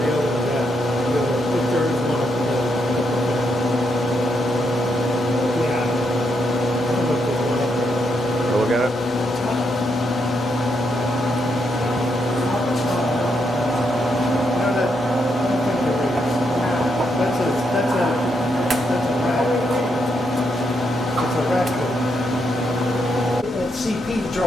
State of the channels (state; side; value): normal; both; correlation 0.79